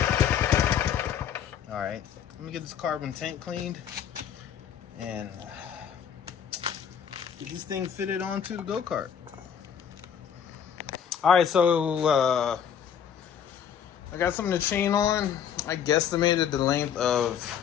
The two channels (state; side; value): quieter; right; 8.4 dB